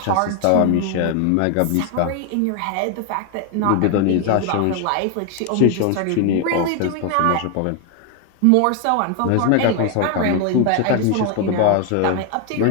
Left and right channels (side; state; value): both; different; correlation 0.01